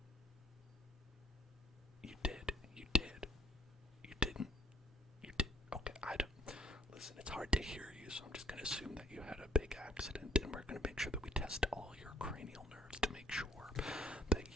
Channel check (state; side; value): normal; both; correlation 0.63